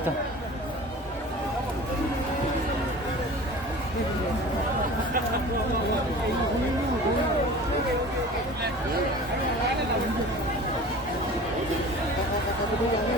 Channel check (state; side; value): normal; both; correlation 0.40